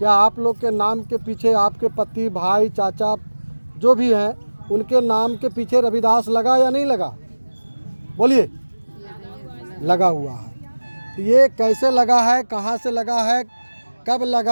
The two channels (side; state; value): both; inverted; correlation -1.00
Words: आप लोग के नाम के पीछे आपके पति, भाई, चाचा जो भी हैं, उनके नाम के पीछे रविदास लगा या नहीं लगा? बोलिए। लगा हुआ है। ये कैसे लगा है, कहाँ से लगा है, कब